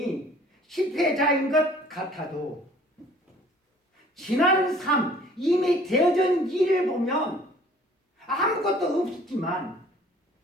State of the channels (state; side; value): normal; both; correlation 0.53